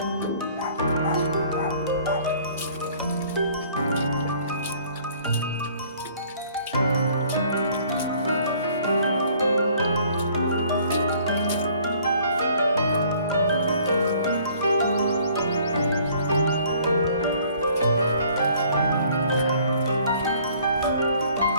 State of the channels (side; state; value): both; inverted; correlation -0.57